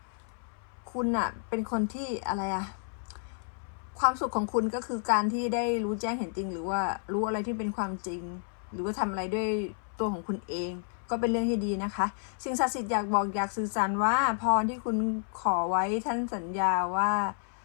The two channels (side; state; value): right; silent; 57 dB below the other